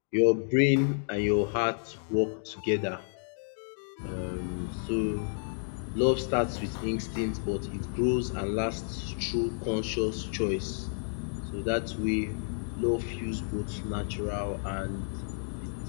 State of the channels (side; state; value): right; silent; digital silence